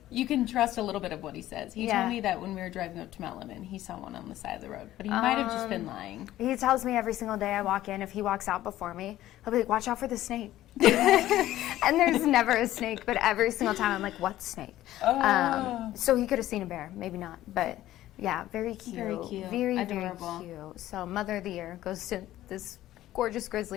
You can trust a little bit of what he says. He told me that when we were driving up to Mount Lemmon, he saw one on the side of the road, but he might have just been lying. He tells me every single day I walk in, if he walks out before me, he'll be like, watch out for the snake. And there's never a snake, but every single time I'm like, what snake? So he could have seen a bear, maybe not, but yeah, very cute. Very cute. Very, Adorable. very cute. So Mother of the Year goes to this gorgeous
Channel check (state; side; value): quieter; right; 14.3 dB